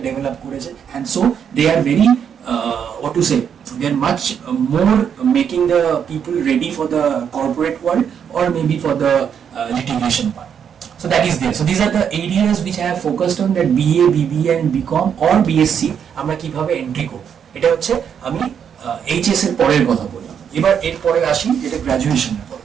ডেভেলপ করেছে, and so they are very what to say, they are much more making the people ready for the corporate world or maybe for the litigation part. So that is there. So these are the areas which I have focused on, that BA, BBA and BCom or BSc আমরা কিভাবে এন্ট্রি করব। এটা হচ্ছে আমি এইচএস এর পরের কথা বললাম। এবার এর পরে আসি যেটা গ্র্যাজুয়েশনের পর।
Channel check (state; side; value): quieter; left; 7.9 dB